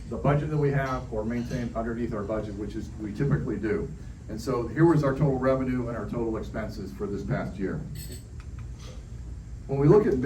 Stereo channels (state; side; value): identical; both; correlation 1.00